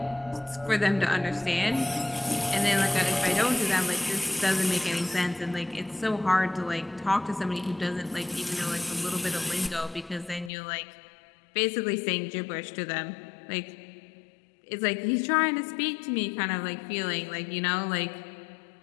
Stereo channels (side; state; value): right; drops out; at 10.5 s